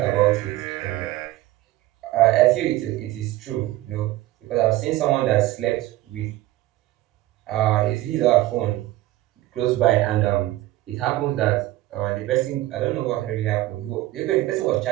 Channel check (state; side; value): quieter; left; 16.4 dB